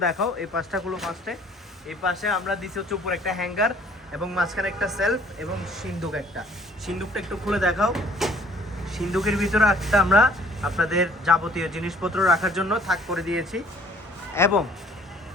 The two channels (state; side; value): normal; both; correlation 0.57